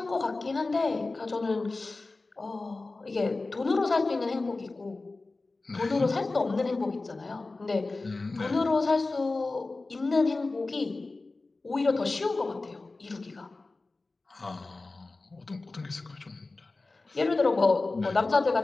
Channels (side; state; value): right; quieter; 3.4 dB